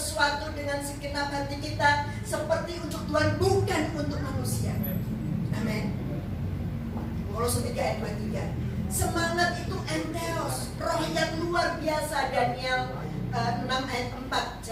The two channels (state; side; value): identical; both; correlation 1.00